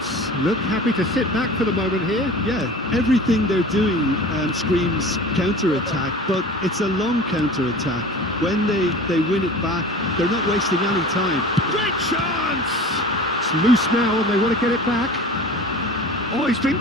look happy to sit back for the moment here. Yeah, everything they're doing screams counter-attack, but it's a long counter-attack. When they win it back, they're not wasting any time. Great chance! It's loose now and they want to get it back. Oh, he's been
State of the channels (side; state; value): both; normal; correlation 0.39